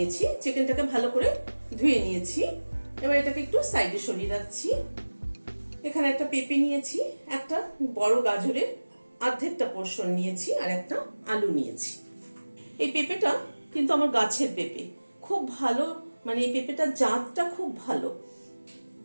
চিকেনটাকে ভালো করে ধুয়ে নিয়েছি। এবার এটাকে একটু সাইডে সরিয়ে রাখছি। এখানে একটা পেঁপে নিয়েছি, একটা বড় গাজরের অর্ধেকটা পোর্শন নিয়েছি, আর একটা আলু নিয়েছি। এই পেঁপেটা কিন্তু আমার গাছের পেঁপে, খুব ভালো, মানে এই পেঁপেটার জাতটা খুব ভালো।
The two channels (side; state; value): both; inverted; correlation -1.00